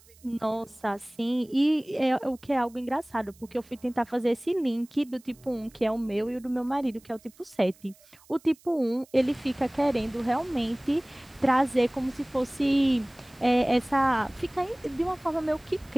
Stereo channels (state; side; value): noise; right; hiss, 27 dB below the sound